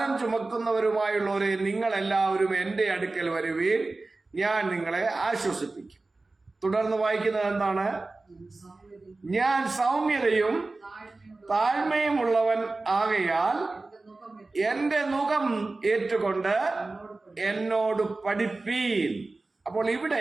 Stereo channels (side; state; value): left; quieter; 3.3 dB